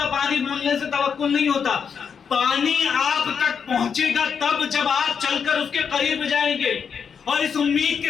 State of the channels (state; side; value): quieter; right; 6.7 dB